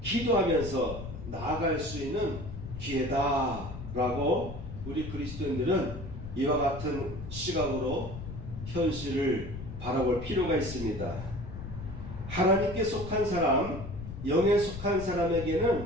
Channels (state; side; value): noise; left; rumble, 10 dB below the sound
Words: 기도하면서 나아갈 수 있는 기회다라고 우리 그리스도인들은 이와 같은 시각으로 현실을 바라볼 필요가 있습니다. 하나님께 속한 사람, 영에 속한